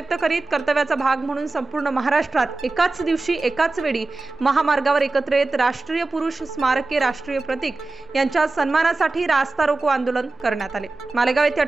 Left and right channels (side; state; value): left; quieter; 3.4 dB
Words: करीत कर्तव्याचा भाग म्हणून संपूर्ण महाराष्ट्रात एकाच दिवशी एकाच वेळी महामार्गावर एकत्र येत राष्ट्रीय पुरुष स्मारके, राष्ट्रीय प्रतीक यांच्या सन्मानासाठी रास्ता रोको आंदोलन करण्यात आले। मालेगाव येथे